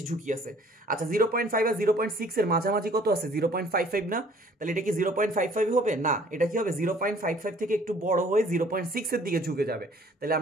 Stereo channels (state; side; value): normal; both; correlation 0.55